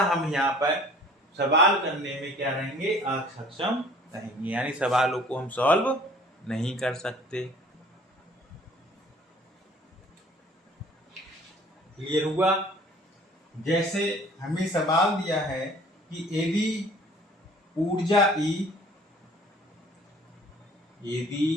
हम यहाँ पर सवाल करने में क्या रहेंगे, असक्षम रहेंगे, यानी सवालों को हम सॉल्व नहीं कर सकते। क्लियर हुआ? जैसे हमें सवाल दिया है कि यदि ऊर्जा E,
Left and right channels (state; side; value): normal; both; correlation 0.52